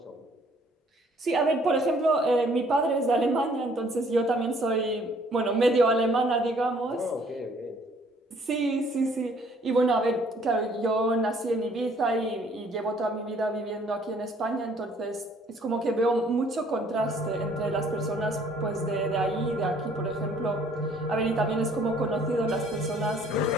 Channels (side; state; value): both; normal; correlation 0.60